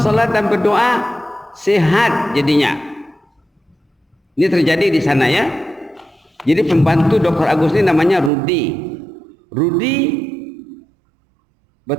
salat dan berdoa sehat jadinya. Ini terjadi di sana ya. Jadi pembantu Dr. Agus ini namanya Rudi. Rudi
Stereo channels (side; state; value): left; drops out; at 8.3 s